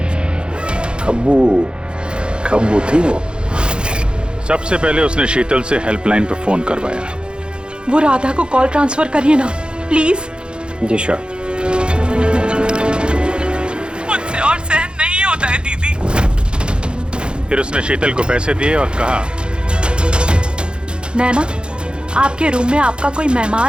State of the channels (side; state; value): left; late; 0.052 ms